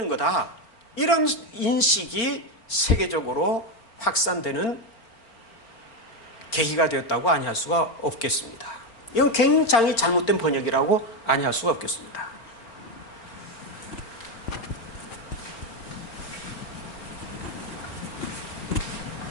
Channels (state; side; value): late; right; 4.4 ms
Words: 거다, 이런 인식이 세계적으로 확산되는 계기가 되었다고 아니할 수가 없겠습니다. 이건 굉장히 잘못된 번역이라고 아니할 수가 없겠습니다.